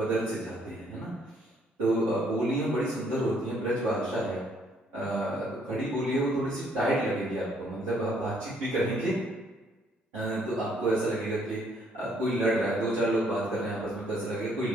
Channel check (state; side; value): normal; both; correlation 0.67